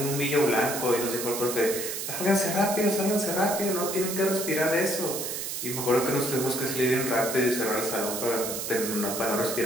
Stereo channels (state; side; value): noise; right; hiss, 4 dB below the sound